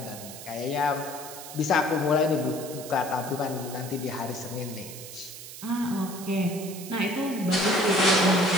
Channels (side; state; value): right; noise; hiss, 12 dB below the sound